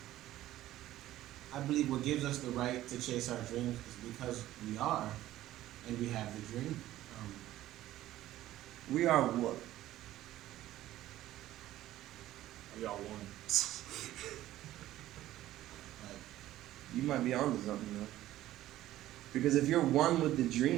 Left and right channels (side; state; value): left; quieter; 14.4 dB